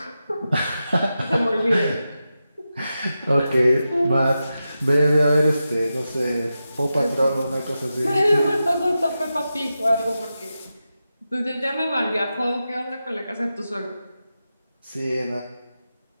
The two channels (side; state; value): both; inverted; correlation -0.91